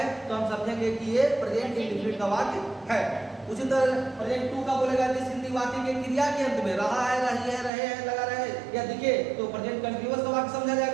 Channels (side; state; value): left; drops out; at 7.7 s